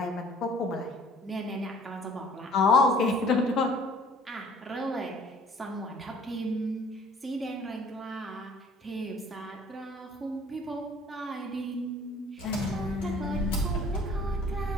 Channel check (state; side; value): normal; both; correlation 0.53